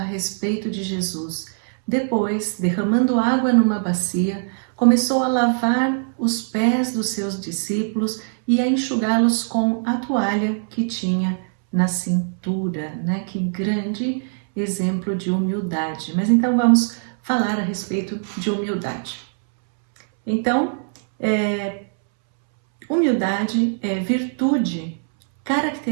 respeito de Jesus. Depois, derramando água numa bacia, começou a lavar os pés dos seus discípulos e a enxugá-los com a toalha que tinha na cintura, né? Que grande exemplo de humildade. Mas então vamos falar a respeito de humildade. Então, humildade é virtude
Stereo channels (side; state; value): left; silent; 65 dB below the other